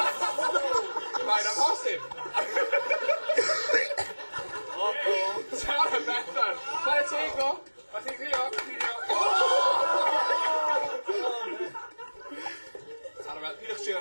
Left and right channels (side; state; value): both; inverted; correlation -1.00